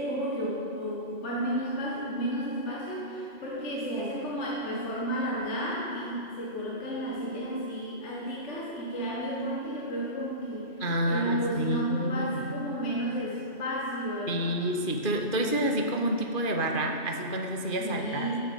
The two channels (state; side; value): late; right; 2.5 ms